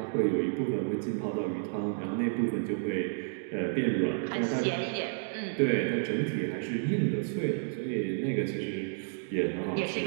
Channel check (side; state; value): left; silent; digital silence